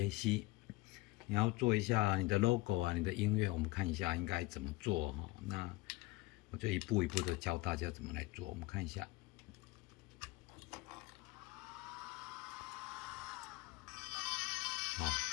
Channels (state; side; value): quieter; right; 20.8 dB